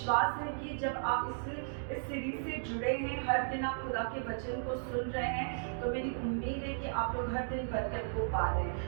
है कि जब आप इस सीरीज से जुड़े हैं, हर दिन आप खुदा के वचन को सुन रहे हैं, तो मेरी उम्मीद है कि आप लोग हर दिन बरकत को पा रहे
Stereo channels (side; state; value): left; silent; digital silence